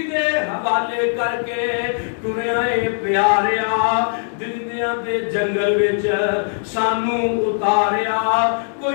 حوالے کر کے ٹریائے پیاریا درندیاں دے جنگل وچ سانو اتاریا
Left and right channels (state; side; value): silent; right; digital silence